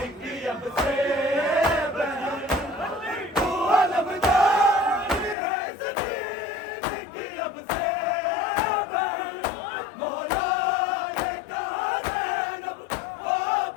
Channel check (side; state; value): right; drops out; at 5.4 s